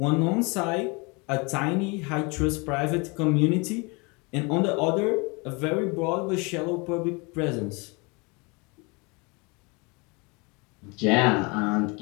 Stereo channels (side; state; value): right; quieter; 29.0 dB